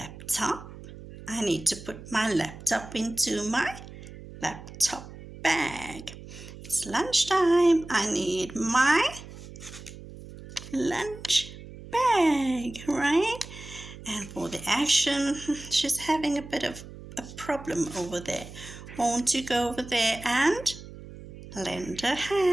I need to put my laptop into my laptop bag. It's lunchtime. I need my lunch bag, right? And for the action, she's having a bit of a problem over there. Won't you go over there and lend a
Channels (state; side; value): noise; right; hum, 15 dB below the sound